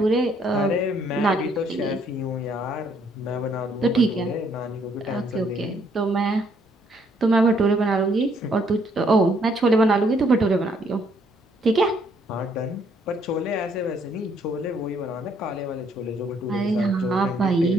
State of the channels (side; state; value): both; normal; correlation 0.68